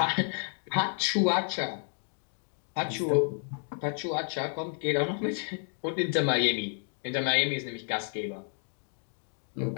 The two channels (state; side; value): silent; right; 57 dB below the other